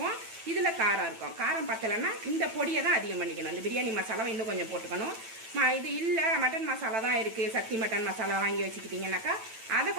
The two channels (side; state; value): left; late; 9.0 ms